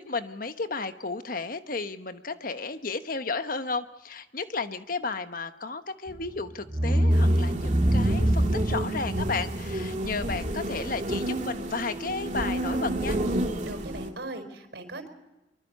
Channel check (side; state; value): both; normal; correlation 0.58